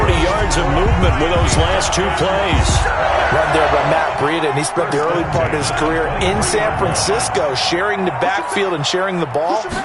yards of movement with those last two plays. Run there by Matt Breida, and he spent the early part of his career in San Francisco sharing the backfield and sharing the ball.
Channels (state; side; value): identical; both; correlation 1.00